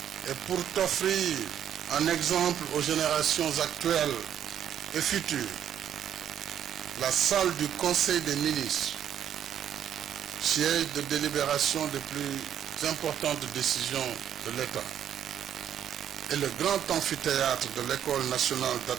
et pour t'offrir un exemple aux générations actuelles et futures, la salle du Conseil des ministres, siège de délibération des plus importantes décisions de l'État, et le grand amphithéâtre de l'École nationale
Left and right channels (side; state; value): left; quieter; 9.8 dB